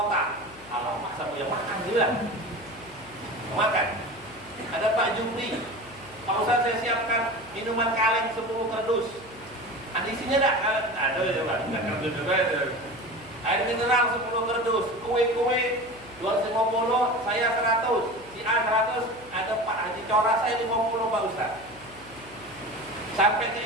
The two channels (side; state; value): left; noise; hum, 21 dB below the sound